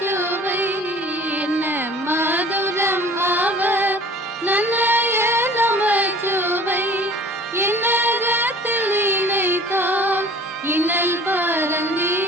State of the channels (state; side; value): normal; both; correlation 0.47